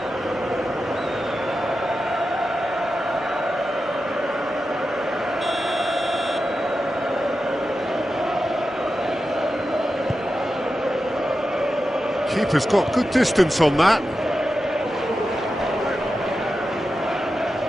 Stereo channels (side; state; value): both; normal; correlation 0.91